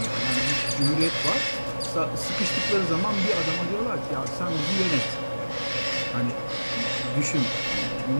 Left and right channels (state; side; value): inverted; both; correlation -1.00